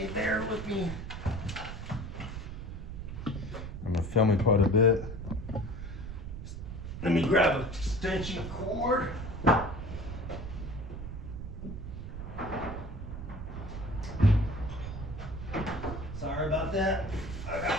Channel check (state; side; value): noise; right; rumble, 7 dB below the sound